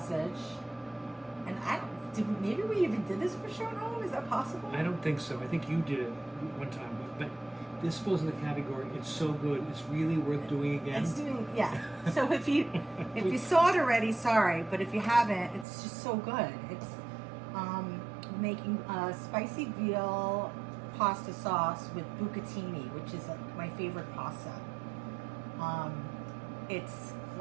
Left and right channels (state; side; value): drops out; left; at 15.7 s